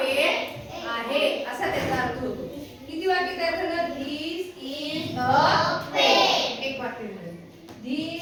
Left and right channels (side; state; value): both; identical; correlation 1.00